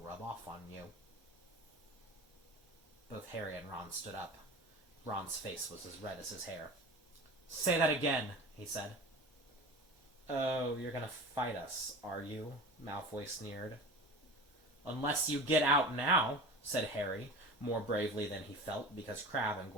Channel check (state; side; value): normal; both; correlation 0.34